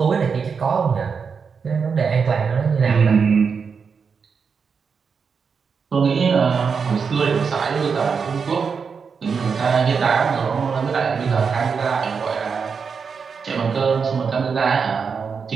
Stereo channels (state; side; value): quieter; left; 5.8 dB